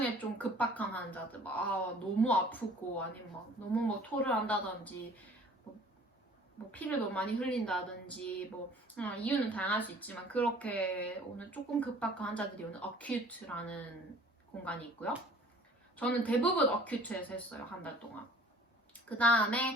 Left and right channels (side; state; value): both; normal; correlation 0.50